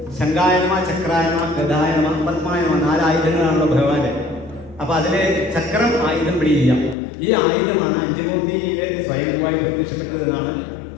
ശങ്കായനമ, ചക്രായനമ, ഗദായനമ, പത്മായനമ 4 ആയുധങ്ങളാണല്ലോ ഭഗവാന്റെ. അപ്പൊ അതിലെ ചക്രം ആയുധം പിടിയില്ല. ഈ ആയുധമാണ് അഞ്ചുമൂർത്തിയിലെ സ്വയംഭൂവായി പ്രത്യക്ഷപ്പെട്ടത് എന്നാണ്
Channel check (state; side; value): drops out; right; at 7.0 s